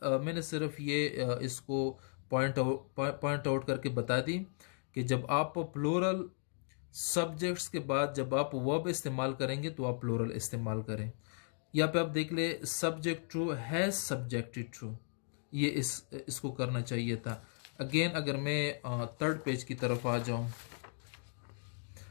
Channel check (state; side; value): silent; right; 54 dB below the other